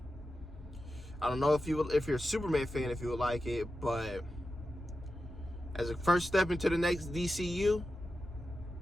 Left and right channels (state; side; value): normal; both; correlation 0.91